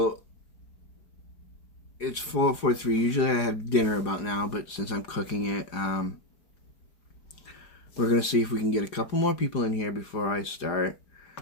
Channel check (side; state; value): right; late; 4.9 ms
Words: it's 4:43. Usually I have dinner about now, but since I'm cooking it, we're going to see if we can get a couple more people in here before I start.